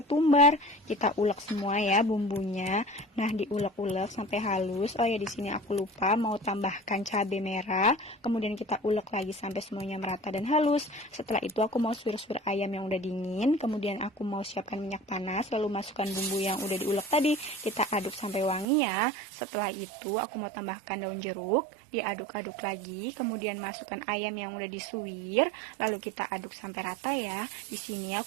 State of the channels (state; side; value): drops out; left; at 18.7 s